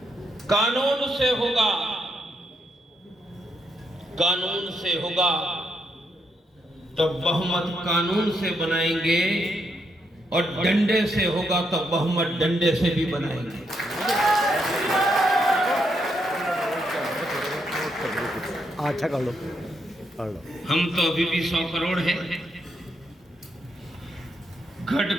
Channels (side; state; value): both; normal; correlation 0.79